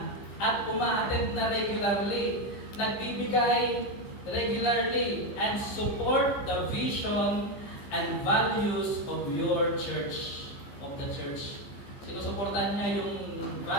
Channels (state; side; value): late; right; 15 ms